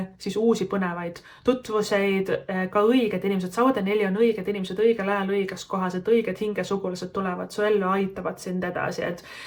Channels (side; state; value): both; identical; correlation 1.00